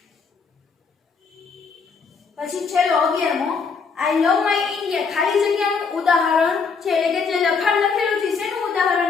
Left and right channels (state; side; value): quieter; right; 5.3 dB